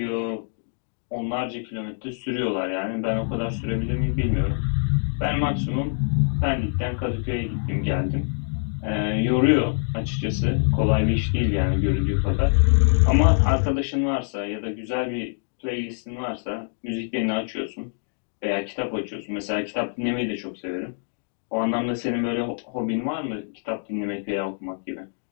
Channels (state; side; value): silent; right; digital silence